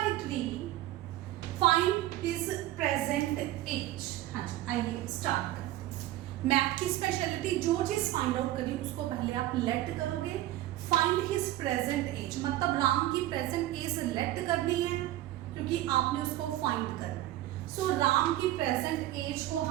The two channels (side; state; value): left; quieter; 15.1 dB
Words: Find his present age. हाँ जी, आइए स्टार्ट करते हैं। मैथ की स्पेशलिटी, जो चीज फाइंड आउट करी उसको पहले आप लेट करोगे। फाइंड हिज प्रेजेंट एज मतलब राम की प्रेजेंट एज लेट करनी है क्योंकि आपने उसको फाइंड करना है। सो राम की प्रेजेंट एज को